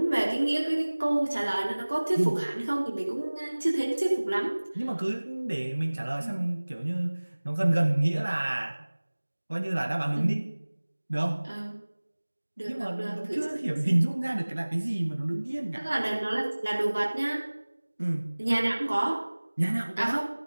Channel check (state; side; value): inverted; both; correlation -1.00